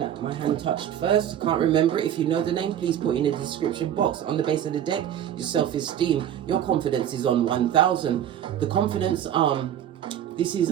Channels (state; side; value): quieter; left; 10.3 dB